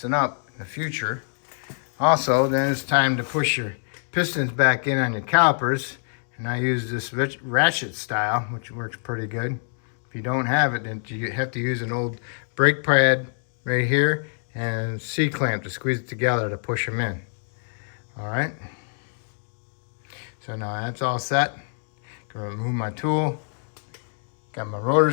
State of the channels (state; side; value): silent; right; 62 dB below the other